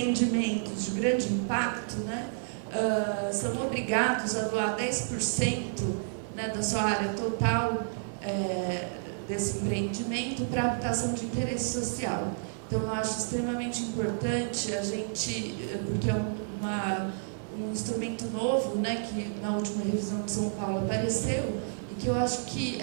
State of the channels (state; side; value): silent; left; 58 dB below the other